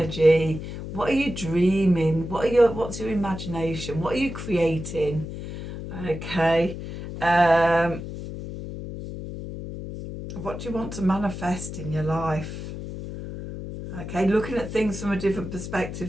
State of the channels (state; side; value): noise; left; hum, 8 dB below the sound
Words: What are you dreaming? What's your imagination? What are you creating? Okay. What do you want to manifest in your life? Okay, looking at things from a different